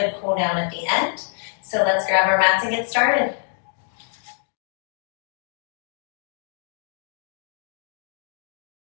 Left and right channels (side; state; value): right; silent; digital silence